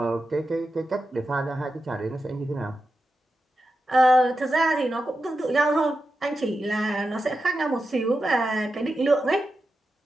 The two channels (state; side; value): normal; both; correlation 0.90